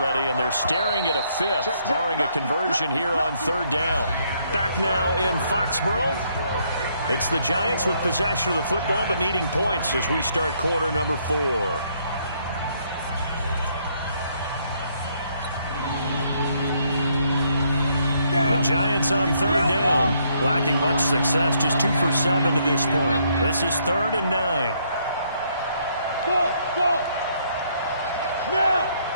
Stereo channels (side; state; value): both; inverted; correlation -0.70